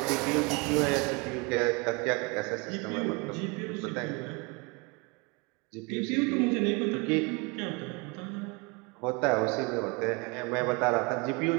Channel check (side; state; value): left; quieter; 29.1 dB